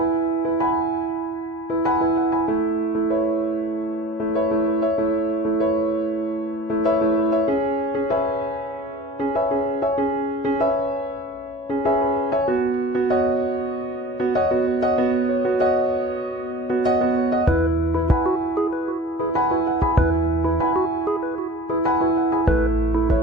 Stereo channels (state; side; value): normal; both; correlation 0.40